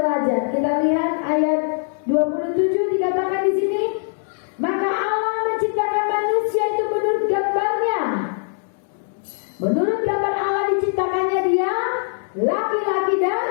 Kita lihat ayat 27 dikatakan di sini, maka Allah menciptakan manusia itu menurut gambarnya. Menurut gambar Allah diciptakannya dia, laki-laki dan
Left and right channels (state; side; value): silent; right; 64 dB below the other